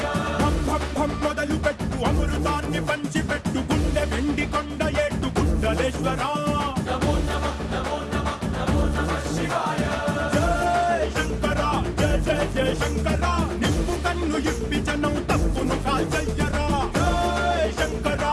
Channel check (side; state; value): both; identical; correlation 1.00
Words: భం భం భం మొదలు పెట్టు అమృతాన్ని పంచి పెట్టు గుండె వెండి కొండ ఏట్టు గుండలేశ్వరా నమో నమః నమో నమః నమో నమః శివాయ జయ శంకరా జయ జయ జయ శంకరా నిప్పు కన్ను ఇప్పి జనం తప్పును కాల్చయ్యరా జయ శంకరా